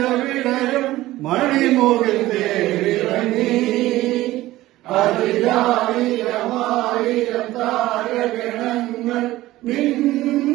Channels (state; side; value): quieter; left; 16.6 dB